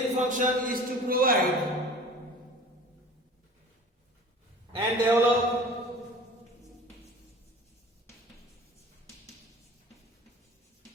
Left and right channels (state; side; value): normal; both; correlation 0.42